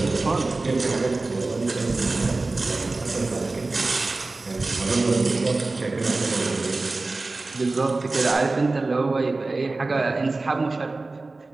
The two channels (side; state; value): left; quieter; 3.4 dB